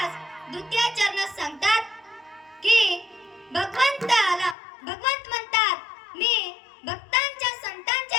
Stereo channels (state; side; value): drops out; right; at 4.5 s